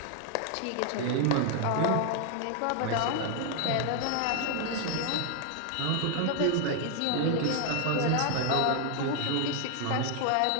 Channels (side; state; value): both; different; correlation 0.00